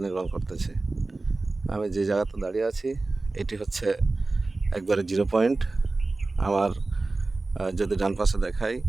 নির্মাণ করতেছে। আমি যে জায়গাতে দাঁড়িয়ে আছি, এটি হচ্ছে একবারে জিরো পয়েন্ট। আমার যদি ডান পাশে দেখাই,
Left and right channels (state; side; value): quieter; left; 3.3 dB